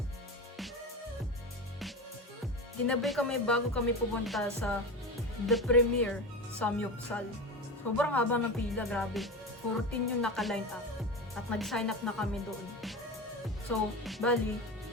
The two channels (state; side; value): normal; both; correlation 0.25